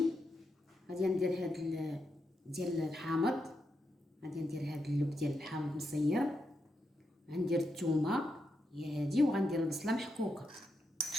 غادي ندير هذا ديال الحامض، غادي ندير هذا اللب ديال الحامض مصير، غندير الثومه هي هذه، وغندير البصله محكوكه.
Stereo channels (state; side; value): normal; both; correlation 0.84